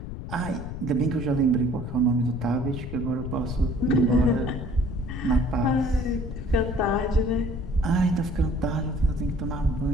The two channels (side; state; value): left; noise; rumble, 8 dB below the sound